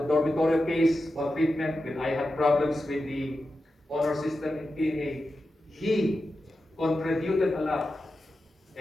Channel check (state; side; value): normal; both; correlation 0.91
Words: dormitory case or treatment, when I had problems with the honor system in PMA, he contributed a lot,